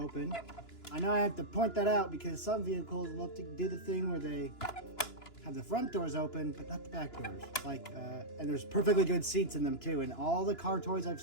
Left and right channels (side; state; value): right; late; 2.9 ms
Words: I know I have to point that out because some vehicles love to do the thing where they have the front doors open, but not the back doors. And there's perfectly good seats in them too. And all the car toys I've